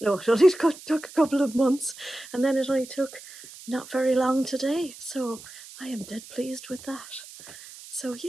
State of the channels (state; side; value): noise; right; hiss, 17 dB below the sound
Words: it only took a couple of months, and then it only took not very long today. So I am dead pleased with that. So